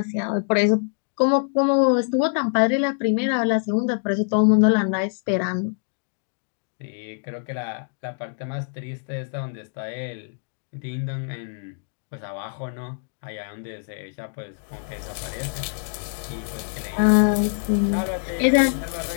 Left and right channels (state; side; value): silent; right; digital silence